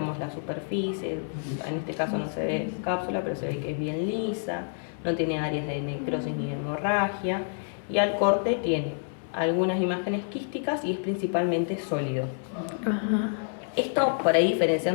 la superficie, en este caso no se ve cápsula, pero se ve que es bien lisa, no tiene áreas de necrosis ni de hemorragia, y al corte tiene algunas imágenes quísticas y es principalmente sólido. Ajá. Esto por ahí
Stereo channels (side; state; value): right; silent; digital silence